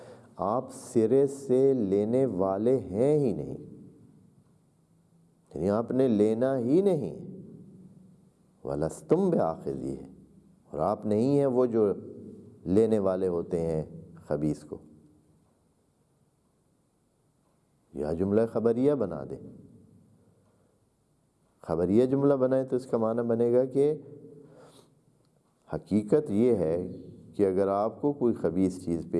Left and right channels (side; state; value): both; identical; correlation 1.00